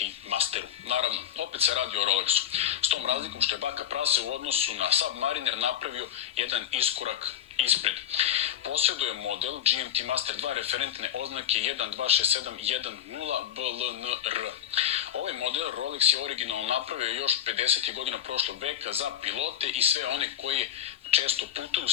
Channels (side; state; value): right; quieter; 10.4 dB